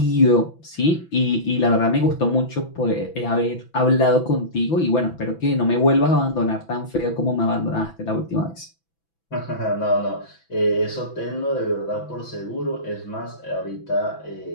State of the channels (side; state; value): right; late; 6.0 ms